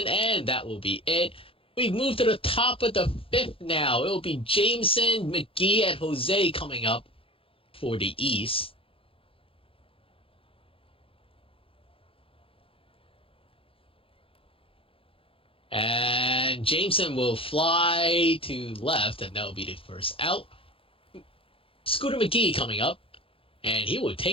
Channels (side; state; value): right; late; 0.27 ms